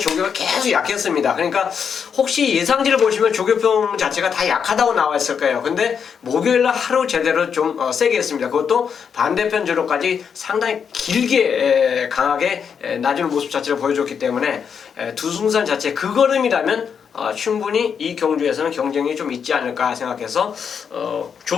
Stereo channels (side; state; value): right; quieter; 7.0 dB